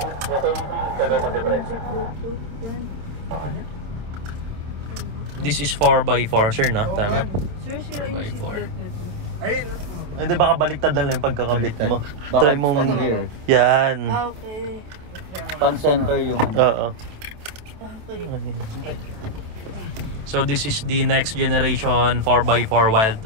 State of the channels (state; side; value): late; left; 27 ms